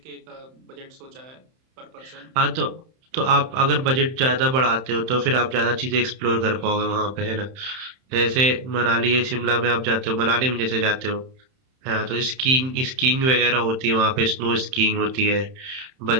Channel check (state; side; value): late; left; 31 ms